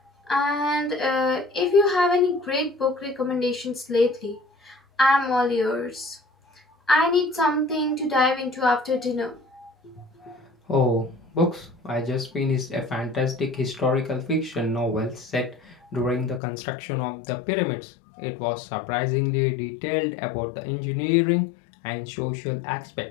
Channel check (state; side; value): drops out; right; at 16.4 s